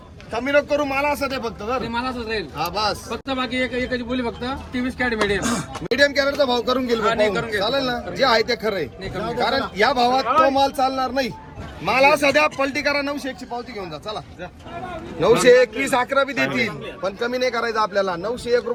कमी नको करू. मला असं ते फक्त जर मला असंच राहील हा बस. फक्त बाकी एकच बोली फक्त 23 कॅरेट मीडियम. मीडियम कॅरेटचा भाव करून गेलो. चालेल ना? जे आहे ते खरं आहे. कारण या भावात तो माल चालणार नाही. मला सध्या पलटी करा. 901 ची पावती घेऊन जा. चला 921 11 बी देतील पण कमी नाही करायचं आपल्याला. 901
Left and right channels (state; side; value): identical; both; correlation 1.00